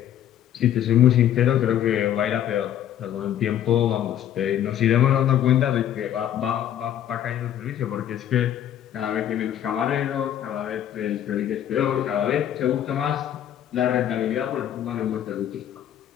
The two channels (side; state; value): right; quieter; 10.8 dB